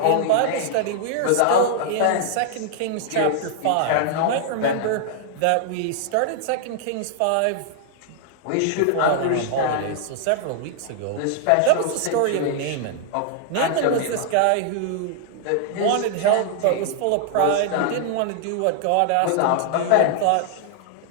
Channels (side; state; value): both; different; correlation 0.00